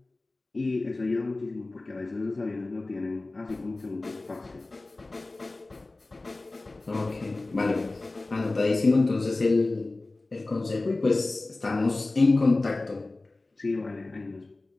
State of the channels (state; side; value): quieter; right; 3.1 dB